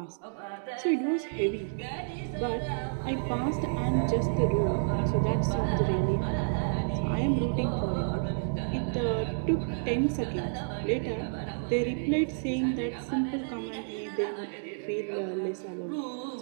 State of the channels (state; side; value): silent; left; digital silence